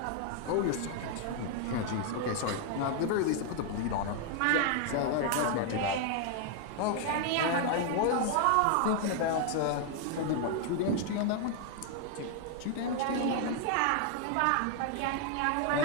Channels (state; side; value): different; both; correlation 0.00